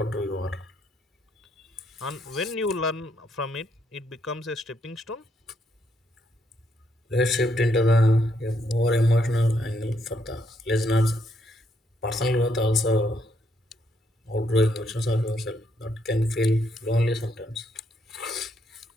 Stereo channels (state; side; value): normal; both; correlation 0.75